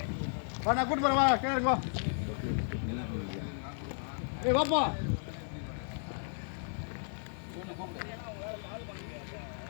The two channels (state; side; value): silent; right; 55 dB below the other